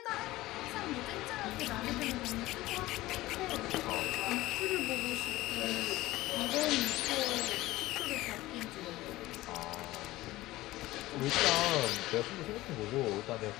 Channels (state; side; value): quieter; right; 17.7 dB